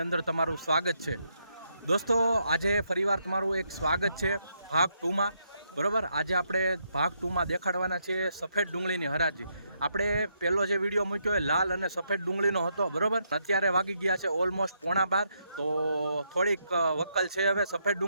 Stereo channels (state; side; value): inverted; both; correlation -0.77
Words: અંદર તમારું સ્વાગત છે. દોસ્તો, આજે ફરીવાર તમારું એક સ્વાગત છે ભાગ 2માં. બરાબર, આજે આપણે ભાગ 2માં દેખાડવાના છે સફેદ ડુંગળીની હરાજી. આપણે પહેલો જે વિડીયો મૂક્યો એ લાલ અને સફેદ ડુંગળીનો હતો. બરાબર, અત્યારે વાગી ગયા છે ઓલમોસ્ટ 11:15, તો થોડીક વક્કલ છે હવે સફેદ